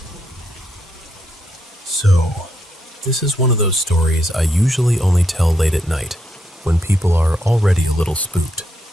So, this is one of those stories I usually only tell late at night, when people are already a little spooked.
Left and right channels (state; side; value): normal; both; correlation 0.79